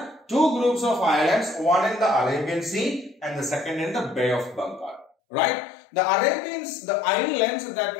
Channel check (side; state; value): right; drops out; at 5.1 s